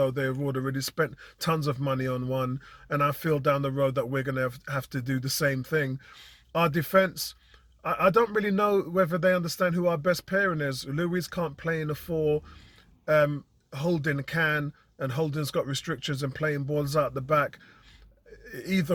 they've already spent tons of money on one. And I feel down the road that we're going to have to do the same thing. Our defence, I don't really know whether they understand who our best pairing is. Luiz can't play in the 4. Holding can, and Holding's got restrictions and playing balls out the back. Either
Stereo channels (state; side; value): identical; both; correlation 1.00